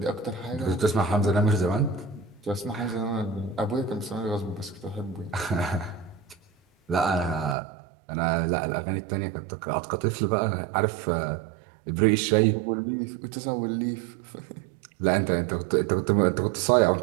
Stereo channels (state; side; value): drops out; left; at 7.6 s